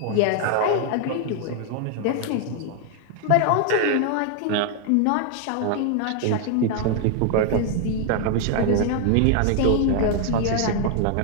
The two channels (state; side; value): different; both; correlation 0.00